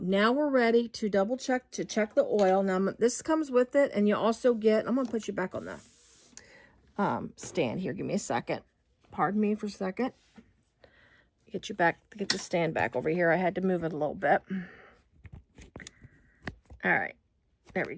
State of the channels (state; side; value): identical; both; correlation 1.00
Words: now we're ready to double check, to check the oil. Now this comes with it, and you also get, I'm going to put you back on the stand here. Give me a second. Pardon me for a second. Get you back, get the stand back over here. I had to move it a little bit. All right, there we